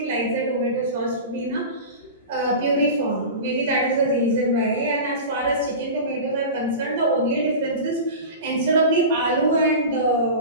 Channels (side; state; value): both; inverted; correlation -0.30